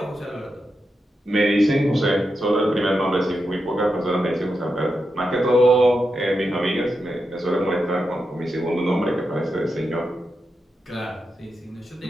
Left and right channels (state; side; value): normal; both; correlation 0.87